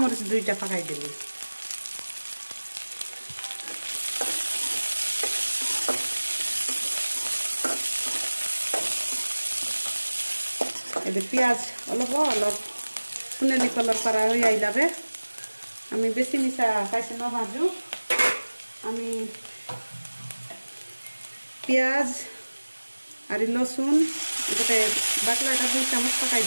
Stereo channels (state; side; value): inverted; both; correlation -1.00